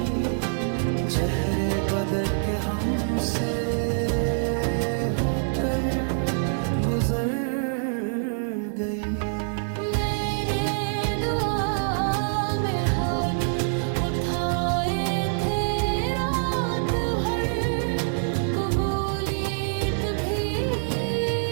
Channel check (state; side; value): silent; left; digital silence